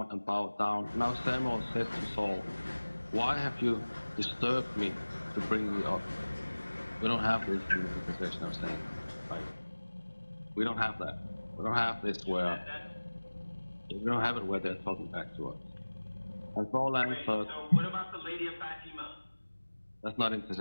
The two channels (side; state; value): both; inverted; correlation -1.00